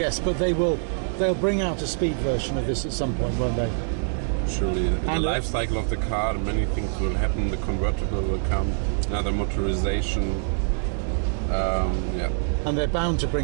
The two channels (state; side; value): silent; left; digital silence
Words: but they'll bring out a speed version of this at some point, won't they? naturally. In the And life cycle of the car, many things will happen. The convertible will come, another motorization. Yeah. And they're bound to